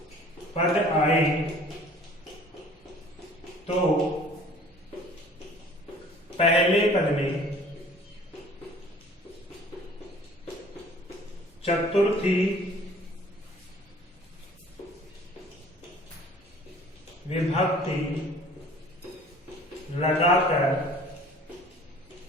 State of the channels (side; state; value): both; normal; correlation 0.50